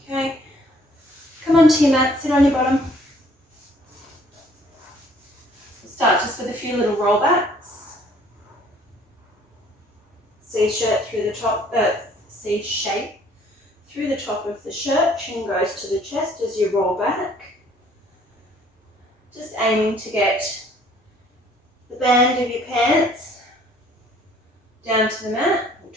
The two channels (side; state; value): both; normal; correlation 0.59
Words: Okay. Come onto your mat, sit on your bottom. We'll start just with a few little rollbacks. C shirt through the top, C shape through the top of the shirt. Chin goes to the chest as you roll back. Just aiming to get the band of your pants down to the mat,